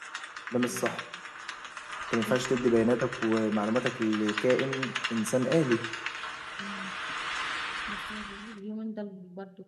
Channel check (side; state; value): both; identical; correlation 1.00